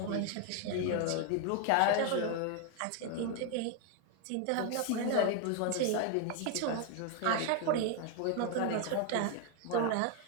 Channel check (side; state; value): both; different; correlation 0.01